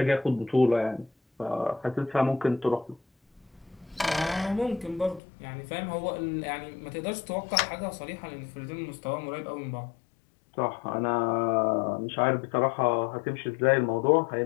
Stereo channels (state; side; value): drops out; right; at 5.2 s